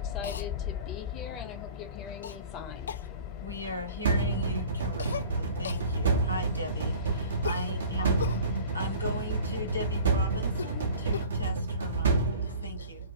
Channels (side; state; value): both; inverted; correlation -0.44